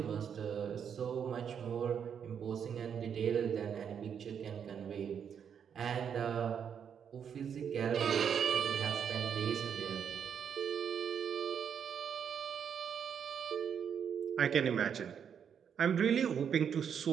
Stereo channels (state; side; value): quieter; left; 7.7 dB